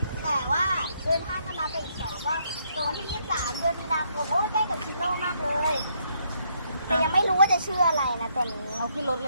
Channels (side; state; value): both; inverted; correlation -0.73